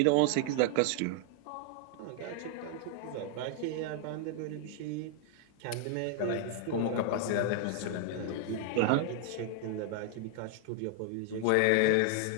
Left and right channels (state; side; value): different; both; correlation 0.00